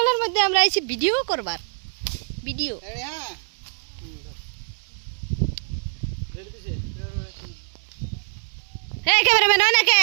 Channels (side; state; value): left; silent; digital silence